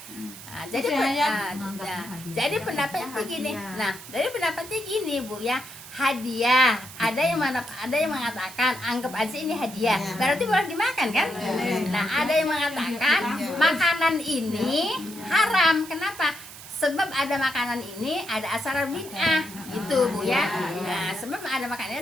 Nah, jadi pendapatnya gini. Nah, dari pendapatnya gini Bu ya, hadiah. Ada yang mengatakan anggap aja ini hadiah, berarti boleh dimakan kan? Nah, ada yang mengatakan makanan ini haram. Kenapa? Sebab ada makanan ini ada aksara bid'ah gitu Bu ya. Nah, sebab ada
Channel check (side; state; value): right; noise; hiss, 15 dB below the sound